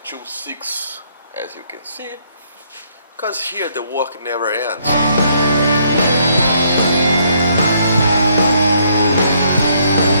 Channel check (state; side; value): inverted; both; correlation -0.69